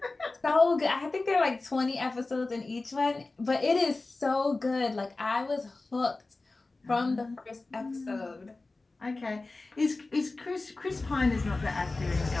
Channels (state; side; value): quieter; right; 3.3 dB